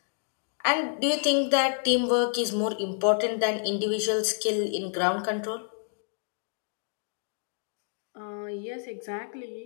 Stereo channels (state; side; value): silent; right; digital silence